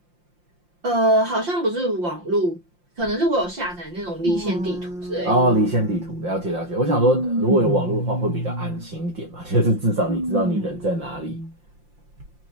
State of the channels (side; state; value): left; late; 5.7 ms